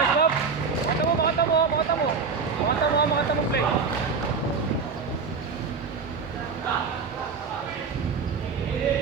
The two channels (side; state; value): left; quieter; 5.3 dB